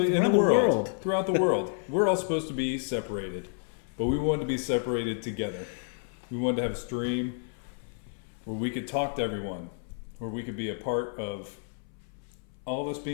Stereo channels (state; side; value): silent; right; 58 dB below the other